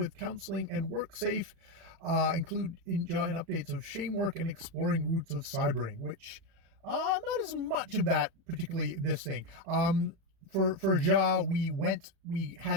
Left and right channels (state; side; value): late; left; 36 ms